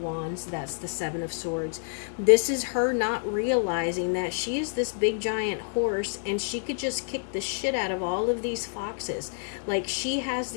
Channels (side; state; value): right; silent; digital silence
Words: Wands. That's the Seven of Swords. This is her not realizing that she is this big giant horse, and she could just kick the shit out of all of these foxes. Like, she has